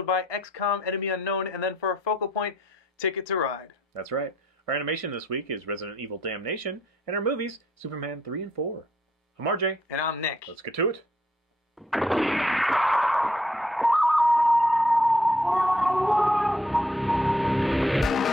by XCOM Enemy Unknown, and then for our focal point, Ticket to Ride. That's right. Our animation this week is Resident Evil Damnation, and our movies, Superman 3 and 4. I'm RJ. And I'm Nick. Let's get to it.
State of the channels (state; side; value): normal; both; correlation 0.68